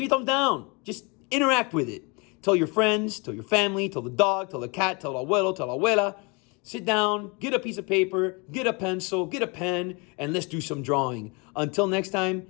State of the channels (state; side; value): quieter; right; 30.1 dB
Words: a thumbs down. Just interact with it. Tell your friends, tell your family, tell the dog, tell the cat, tell abuelo, tell abuela. Sit down, get a piece of paper, get a pencil, get a pen, and let's do some drawing. Until next time,